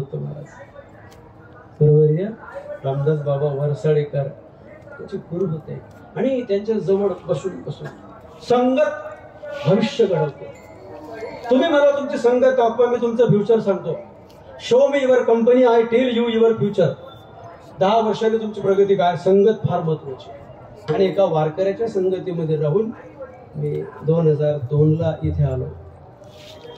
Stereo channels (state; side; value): identical; both; correlation 1.00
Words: महाराज. बरोबर आहे रामदास बाबा वरसाडेकर त्याचे गुरु होते. आणि त्यांच्या जवळ बसून बसून संगत भविष्य घडवते. तुम्ही मला तुमची संगत दाखवा, मी तुमचं फ्युचर सांगतो. Show me your company, I tell you your future. 10 वर्षांनी तुमची प्रगती काय. संगत फार महत्वाची. आणि एका वारकऱ्याच्या संगतीमध्ये राहून मी 2002ला इथे आलो.